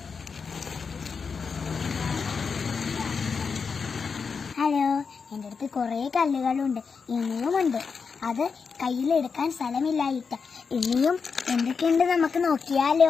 ഹലോ, എൻ്റെ അടുത്ത് കുറേ കല്ലുകളുണ്ട്, ഇനിയുമുണ്ട്. അത് കയ്യിലെടുക്കാൻ സ്ഥലമില്ലായിട്ട്. ഇനിയും എന്തൊക്കെയുണ്ട് നമുക്ക്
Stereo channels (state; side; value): quieter; right; 5.5 dB